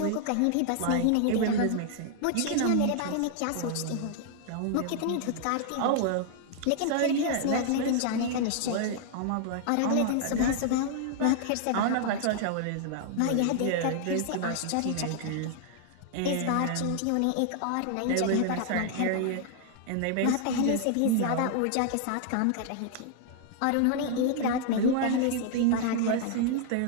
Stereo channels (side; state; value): both; different; correlation 0.00